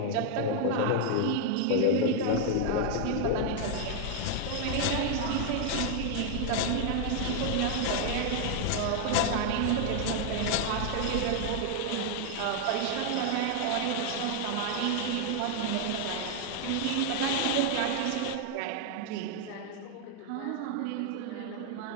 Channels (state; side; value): different; both; correlation 0.00